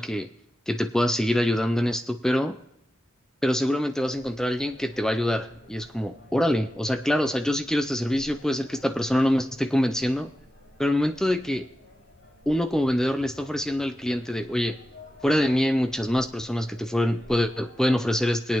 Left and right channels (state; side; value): normal; both; correlation 0.92